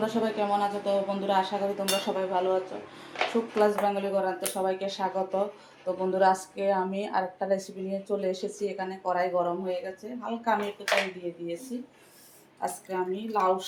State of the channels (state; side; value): identical; both; correlation 1.00